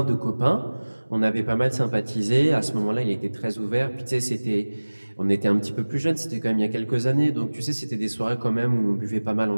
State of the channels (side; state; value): both; inverted; correlation -1.00